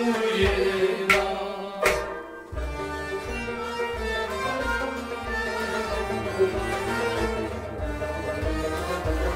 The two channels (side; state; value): both; identical; correlation 1.00